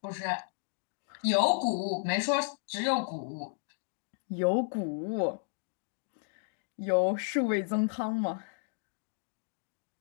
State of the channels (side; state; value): right; silent; digital silence